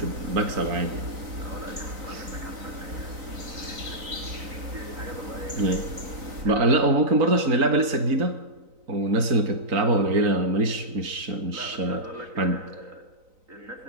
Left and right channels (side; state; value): left; late; 3.9 ms